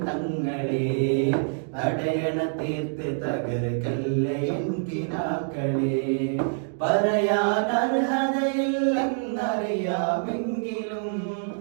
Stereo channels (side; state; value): left; silent; digital silence